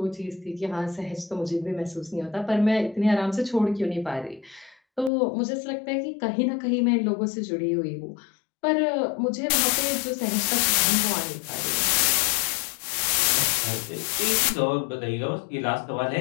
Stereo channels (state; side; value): drops out; right; at 5.1 s